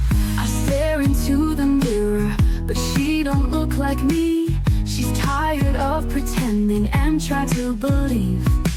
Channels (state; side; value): identical; both; correlation 1.00